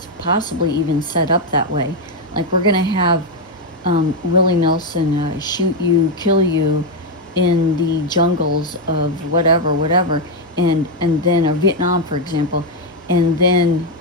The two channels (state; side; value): normal; both; correlation 0.03